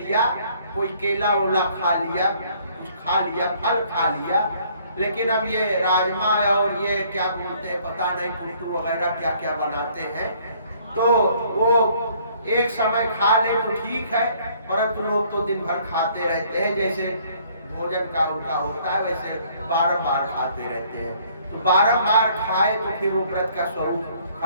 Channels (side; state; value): both; inverted; correlation -0.61